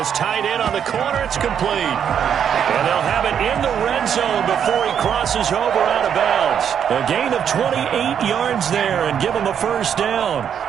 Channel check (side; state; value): left; quieter; 8.4 dB